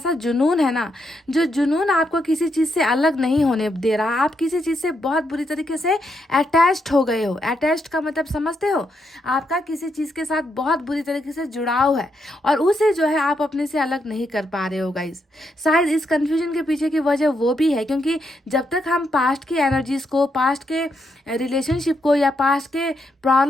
जुनून है ना, जो जुनून आपको किसी चीज़ से अलग नहीं होने दे रहा। आप किसी चीज़ से बहुत बुरी तरीके से अटैच्ड हो गए हो। अटैच्ड का मतलब समझते हो, आपका किसी चीज़ के साथ बहुत बुरी तरीके से जुड़ाव है, और उसे जो है आप अपने से अलग नहीं कर पा रहे हो गाइज। शायद इस कन्फ्यूजन के पीछे की वजह वो भी है, क्योंकि जब तक हम पास्ट की एनर्जीज को, पास्ट के रिलेशनशिप को या पास्ट के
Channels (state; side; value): normal; both; correlation 0.80